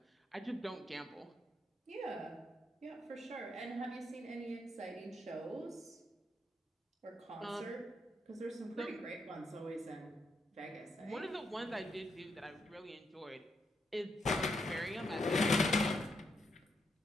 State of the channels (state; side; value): normal; both; correlation 0.79